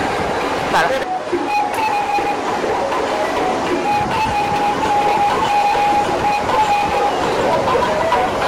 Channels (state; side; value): identical; both; correlation 1.00